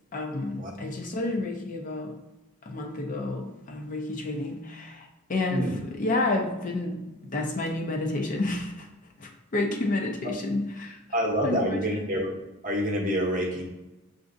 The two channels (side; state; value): both; normal; correlation 0.41